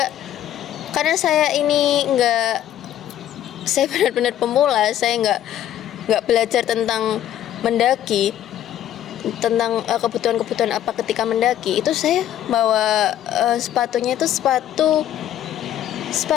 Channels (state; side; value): quieter; right; 11.5 dB